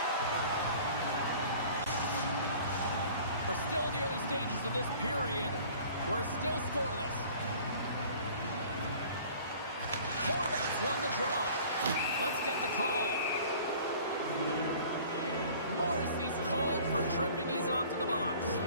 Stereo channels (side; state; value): both; inverted; correlation -0.48